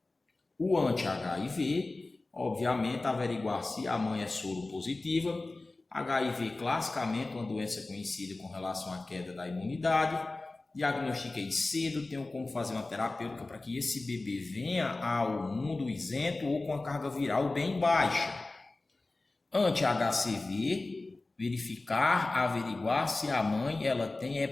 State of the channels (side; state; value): right; quieter; 3.2 dB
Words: O anti-HIV, obviamente, averiguar se a mãe é soropositiva. HIV, classicamente, uma doença conhecida com relação à queda da imunidade. Diagnostiquei cedo, tenho como fazer uma terapêutica para que esse bebê venha ao mundo isento ou com a carga viral bem baixa. Anti-HCV, verificar, averiguar se a mãe ela tem